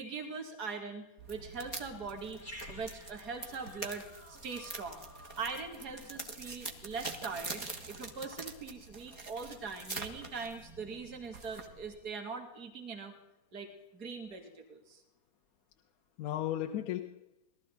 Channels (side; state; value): right; late; 4.3 ms